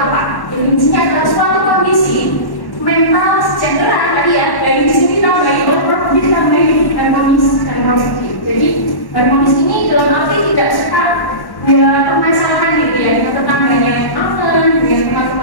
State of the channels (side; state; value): right; late; 1.1 ms